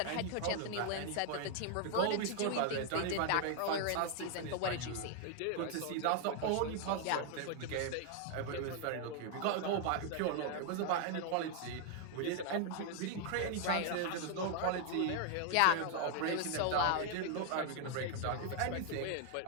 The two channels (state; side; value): different; both; correlation 0.00